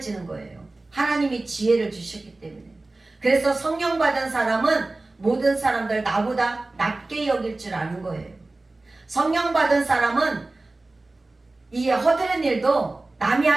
거예요. 하나님이 지혜를 주셨기 때문에. 그래서 성령 받은 사람은 모든 사람들 나보다 낮게 여길 줄 아는 거예요. 성령 받은 사람은 이 허드렛 일도, 남이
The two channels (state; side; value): quieter; left; 3.1 dB